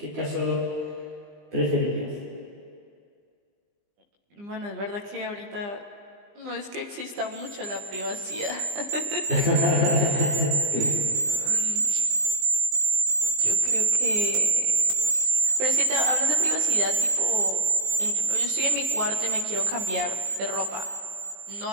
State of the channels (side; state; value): left; late; 20 ms